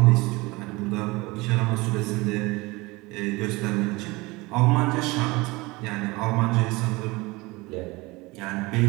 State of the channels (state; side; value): quieter; left; 23.0 dB